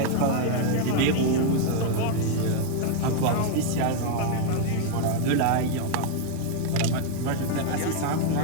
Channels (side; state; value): both; different; correlation 0.00